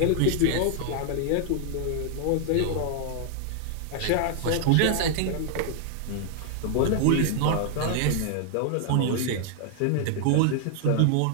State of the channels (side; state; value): both; different; correlation 0.00